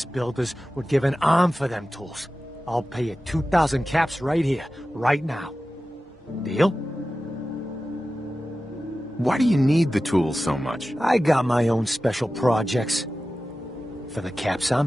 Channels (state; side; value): normal; both; correlation 0.94